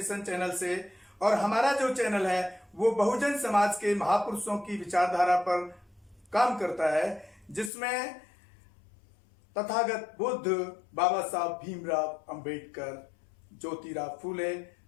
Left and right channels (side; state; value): right; drops out; at 7.7 s